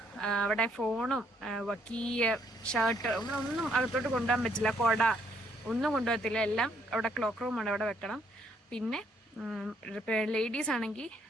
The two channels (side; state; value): both; normal; correlation 0.69